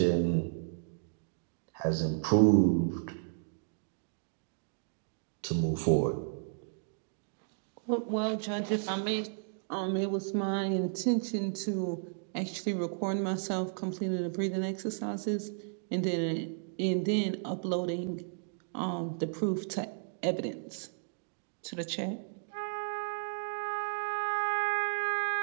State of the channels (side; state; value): left; silent; digital silence